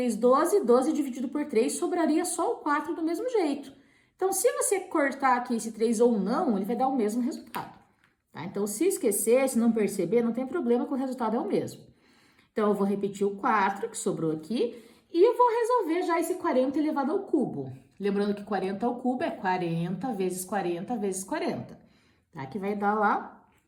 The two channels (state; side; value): identical; both; correlation 1.00